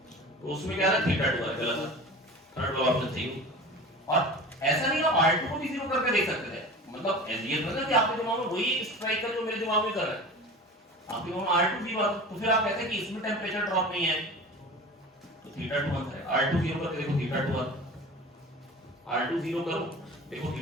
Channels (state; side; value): normal; both; correlation 0.36